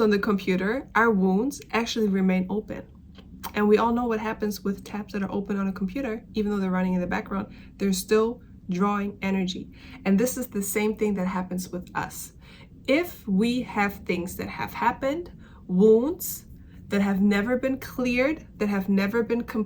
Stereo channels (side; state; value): both; identical; correlation 1.00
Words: the computer, our wounds actually remain open. And we all know what happens with tabs that are open on a computer, even though they're running in the background, they're still drawing energy. And this is the same thing that happens with us. If we have things that have happened, wounds that have never been cleared, that have never been